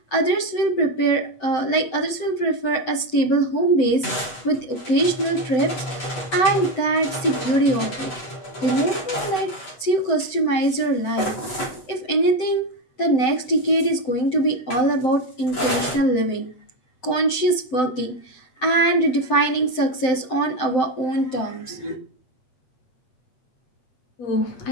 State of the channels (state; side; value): late; right; 7.9 ms